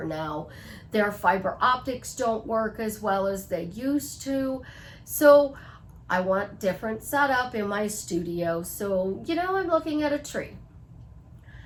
now. Their fiber optics don't work as well as they used to. So I want different setup in my studio. So, I'm looking at a tree.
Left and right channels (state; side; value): identical; both; correlation 1.00